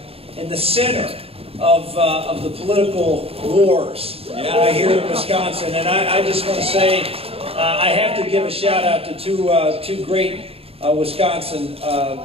center of the political wars here in Wisconsin. And I just want to say I have to give a shout out to two great Wisconsin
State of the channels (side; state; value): left; late; 0.28 ms